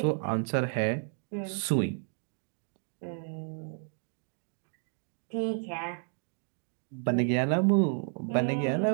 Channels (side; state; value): left; silent; 57 dB below the other